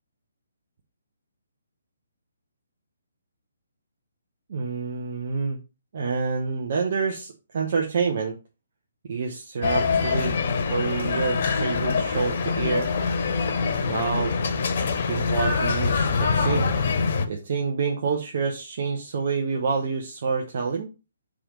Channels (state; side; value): inverted; both; correlation -0.71